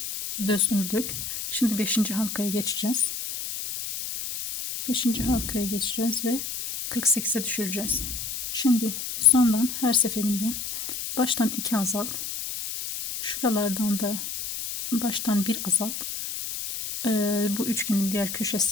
düz ördük. Şimdi 5. halkaya geçeceğiz. 5. halkaya geçeceğiz ve 48'e düşüreceğiz. Şimdi sondan her seferinde baştan 2 azalt. Şuralardan da baştan 1 azalt. Bu üçgenin diğer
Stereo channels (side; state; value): left; noise; hiss, 6 dB below the sound